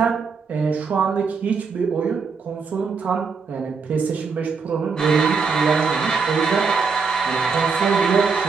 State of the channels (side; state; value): left; quieter; 5.2 dB